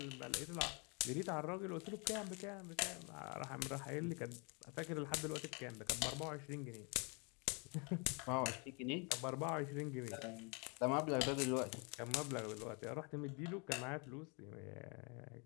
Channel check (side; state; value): right; quieter; 33.3 dB